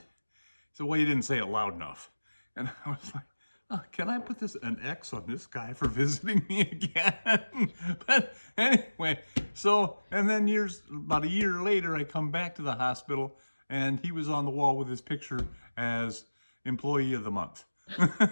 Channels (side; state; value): both; inverted; correlation -1.00